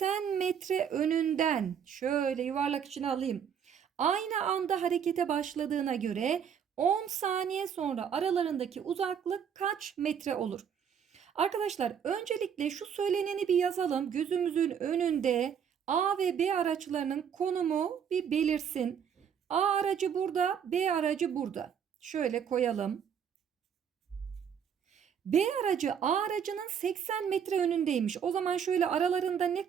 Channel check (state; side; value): quieter; left; 7.9 dB